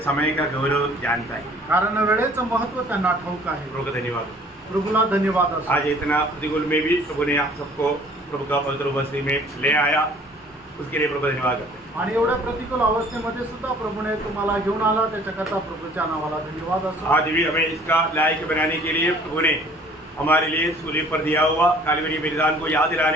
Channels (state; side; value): normal; both; correlation 0.53